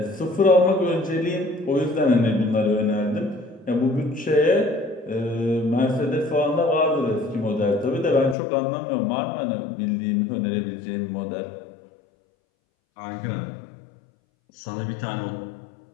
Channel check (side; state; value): right; drops out; at 8.3 s